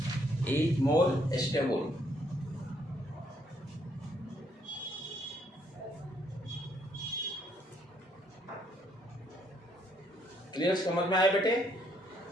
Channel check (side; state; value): both; normal; correlation 0.70